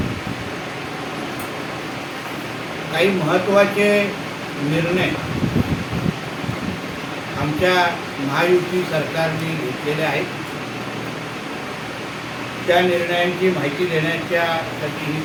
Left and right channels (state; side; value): identical; both; correlation 1.00